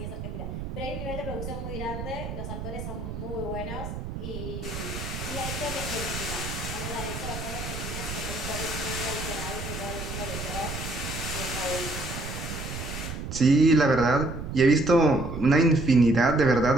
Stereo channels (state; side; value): noise; right; rumble, 7 dB below the sound